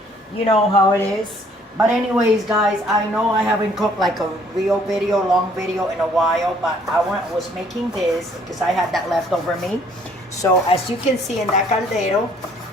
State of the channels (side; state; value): both; normal; correlation 0.61